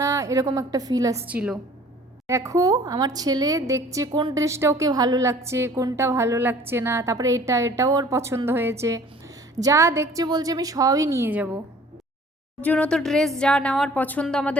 না, এরকম একটা ফিল আসছিল। দেখো আমার ছেলে দেখছে কোন ড্রেসটা ওকে ভালো লাগছে, কোনটা ভালো লাগছে না, তারপরে এটাও ওর পছন্দ হয়েছে। যা দেখছে বলছে আমি সবই নিয়ে যাব। ওর জন্য তো ড্রেস যা নেওয়ার পছন্দ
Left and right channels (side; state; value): both; normal; correlation 0.51